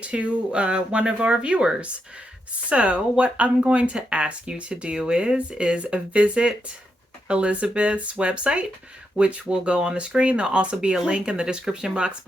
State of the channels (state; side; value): normal; both; correlation 0.83